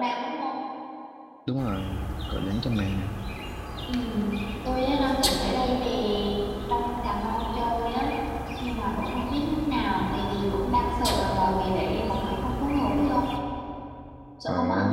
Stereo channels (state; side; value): identical; both; correlation 1.00